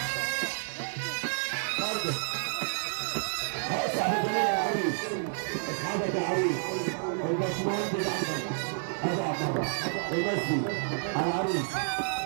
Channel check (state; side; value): silent; left; digital silence